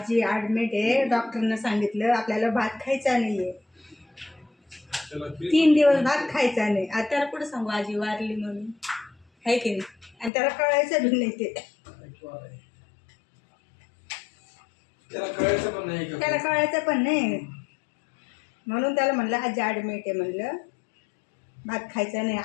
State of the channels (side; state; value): right; drops out; at 10.3 s